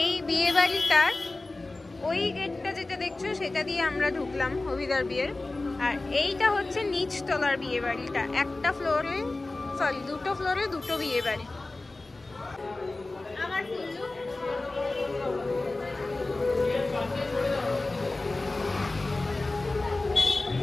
বিয়ে বাড়িটার ওই গেটটা যেটা দেখছো সেটা দিয়ে আমরা ঢুকলাম অভিদার বিয়ের আর এইটা হচ্ছে নিচতলার বিয়ে বাড়িটা একটা ফ্লোরে সরি দুটো ফ্লোরে দুটো বিয়ে বাড়ি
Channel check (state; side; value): quieter; right; 3.1 dB